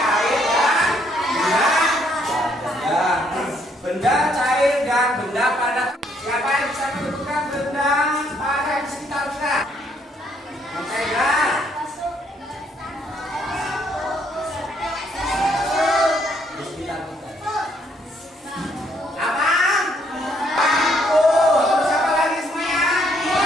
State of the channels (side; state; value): both; normal; correlation 0.69